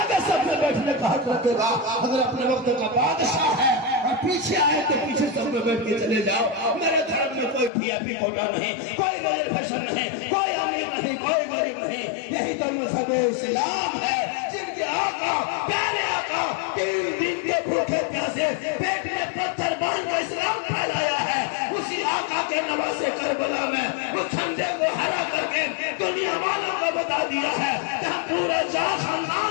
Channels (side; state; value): right; drops out; at 7.7 s